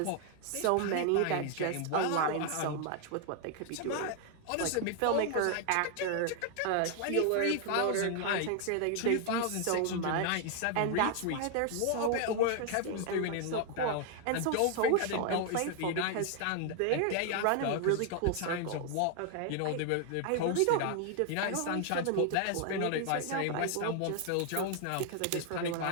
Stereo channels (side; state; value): both; different; correlation 0.00